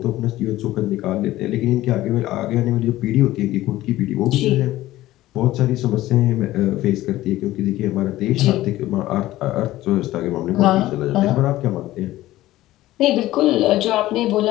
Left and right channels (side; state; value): right; quieter; 15.9 dB